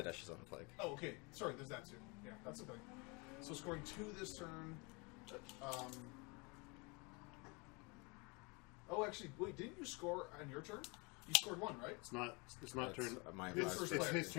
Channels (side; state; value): right; quieter; 29.4 dB